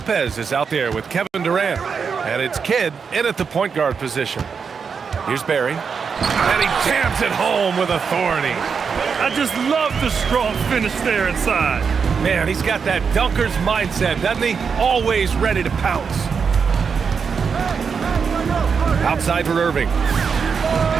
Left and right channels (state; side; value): quieter; left; 6.0 dB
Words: is out there with Kevin Durant. And it's Kidd in at the point guard position. Here's Barry. And he jams it home with authority. I just love the strong finish there inside. Man, he's got that dunker's mindset, doesn't he? Always ready to pounce. Outside for Irving.